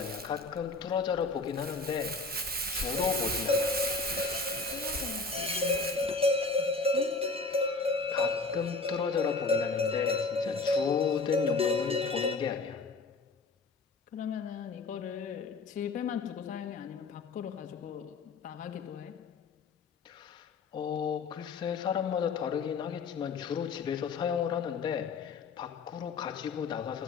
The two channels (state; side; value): quieter; right; 4.0 dB